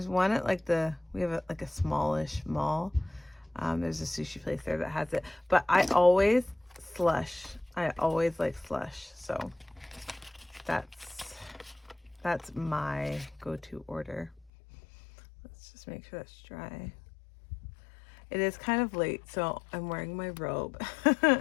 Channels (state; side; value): drops out; right; at 14.5 s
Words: one at we have a smallish mall. There's a sushi place there that has it. But I always slush. I always like slush. So that's my go-to order. Let's just make sure that's dry. It is kind of late, so I'm wearing my robe,